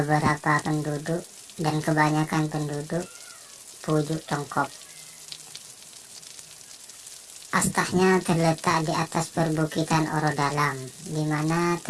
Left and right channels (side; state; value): both; identical; correlation 1.00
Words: penduduk dan kebanyakan penduduk Pujuk Congkop. Astahnya terletak di atas perbukitan Orodalam, di mana